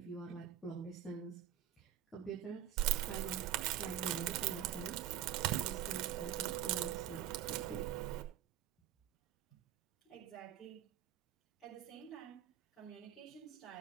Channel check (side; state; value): left; quieter; 11.3 dB